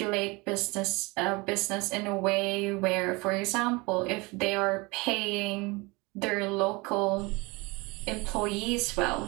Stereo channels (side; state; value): left; quieter; 25.3 dB